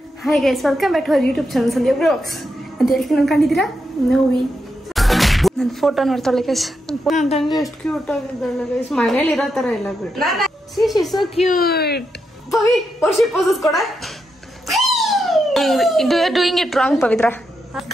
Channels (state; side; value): normal; both; correlation 0.84